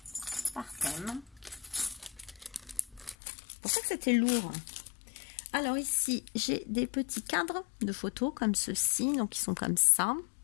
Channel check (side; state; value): right; drops out; at 3.2 s